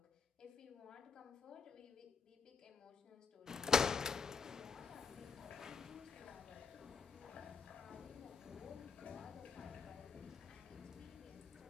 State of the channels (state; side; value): quieter; right; 5.5 dB